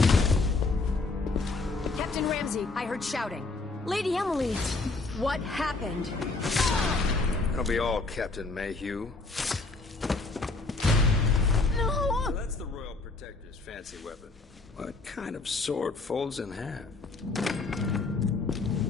Captain Ramsey, I heard shouting. Lady Emily, what happened? That'll be all, Captain Mayhew. No! So that's the Royal Protector's fancy weapon. What kind of sword folds in half?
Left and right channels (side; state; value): right; quieter; 3.6 dB